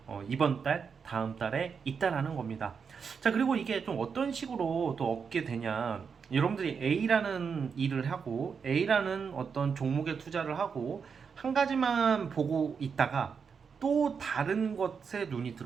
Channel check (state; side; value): quieter; left; 6.1 dB